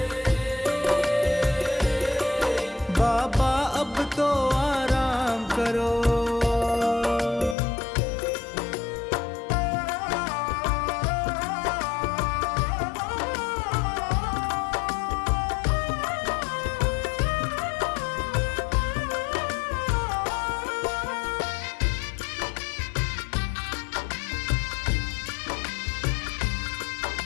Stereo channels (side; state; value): right; drops out; at 7.6 s